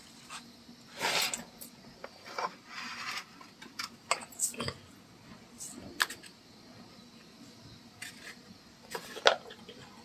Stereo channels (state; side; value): identical; both; correlation 1.00